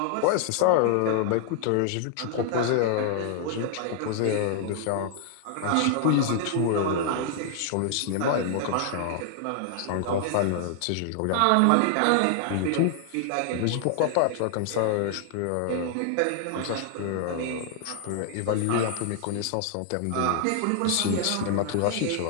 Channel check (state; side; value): different; both; correlation 0.00